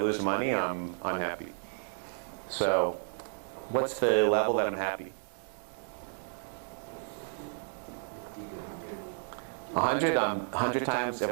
money, I'm unhappy. So what's the level that I'm happy? 100, 100 times. If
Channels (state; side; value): silent; left; digital silence